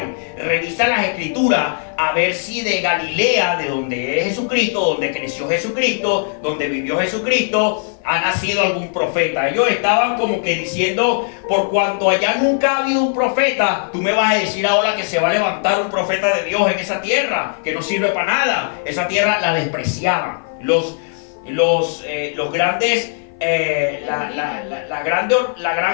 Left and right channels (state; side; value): silent; right; 56 dB below the other